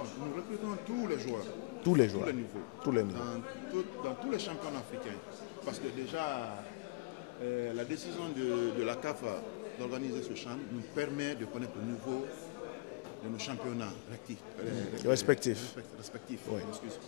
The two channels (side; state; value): right; quieter; 25.5 dB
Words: nous recrutons tous les joueurs. Tous les niveaux. Dans tous les championnats africains. Parce que déjà, la décision de la CAF d'organiser ce CHAN nous permet de connaître le niveau de nos championnats respectifs. Oui. Excuse.